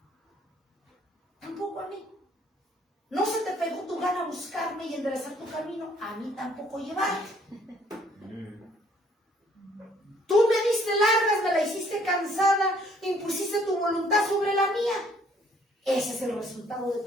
Tampoco a mí. ¿No se te pegó tu gana buscarme y enderezar tu camino? A mí tampoco llevarte. Tú me diste largas, me la hiciste cansada, impusiste tu voluntad sobre la mía. Ese es el resultado de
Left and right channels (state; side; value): normal; both; correlation 0.62